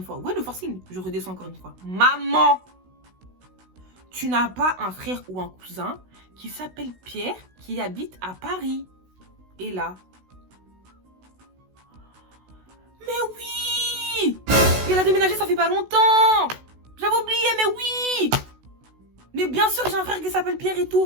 fois. Ouais, le forcing. Je redescends encore une fois. Maman, tu n'as pas un frère ou un cousin qui s'appelle Pierre, qui habite à Paris? Et là, mais oui! Il a déménagé, ça fait pas longtemps! J'avais oublié, mais oui! Mais bien sûr que j'ai un frère qui s'appelle Pierre et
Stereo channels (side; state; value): left; late; 16 ms